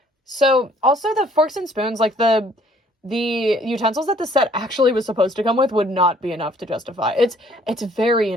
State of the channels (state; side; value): normal; both; correlation 0.60